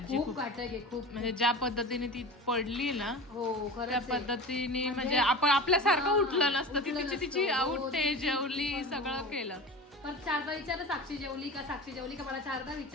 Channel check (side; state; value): both; normal; correlation 0.32